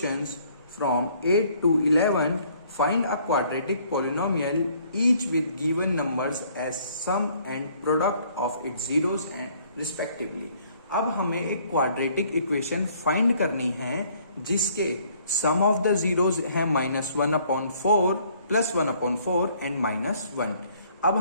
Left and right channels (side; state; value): both; inverted; correlation -0.62